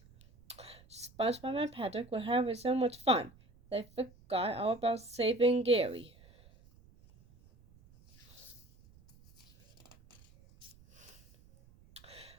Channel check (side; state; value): right; noise; rumble, 26 dB below the sound